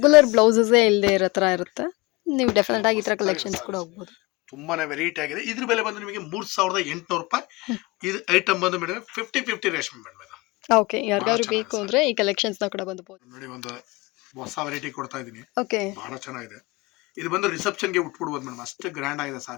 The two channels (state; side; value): quieter; right; 24.0 dB